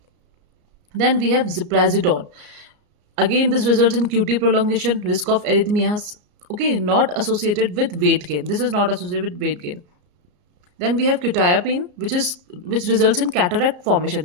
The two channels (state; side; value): late; left; 34 ms